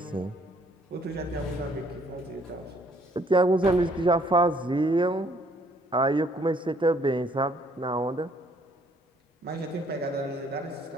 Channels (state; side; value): normal; both; correlation 0.64